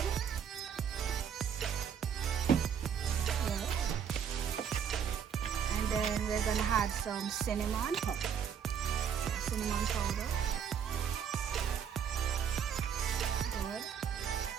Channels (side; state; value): left; quieter; 7.9 dB